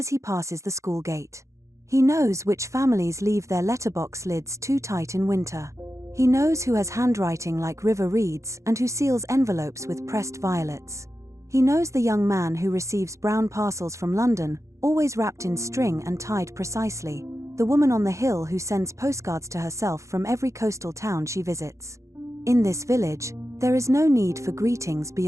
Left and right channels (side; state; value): left; late; 0.15 ms